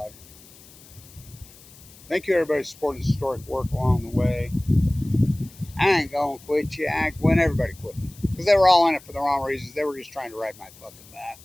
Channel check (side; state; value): left; noise; hiss, 22 dB below the sound